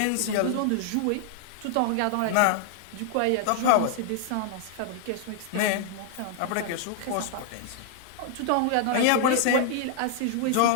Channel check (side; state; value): both; different; correlation 0.00